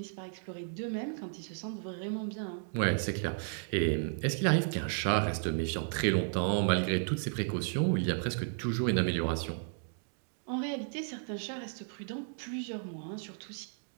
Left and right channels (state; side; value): silent; left; digital silence